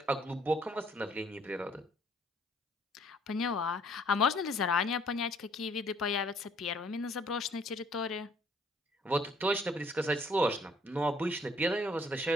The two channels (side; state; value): both; normal; correlation 0.62